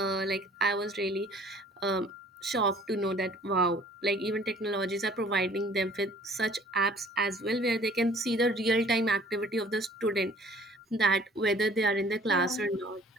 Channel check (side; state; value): both; normal; correlation 0.54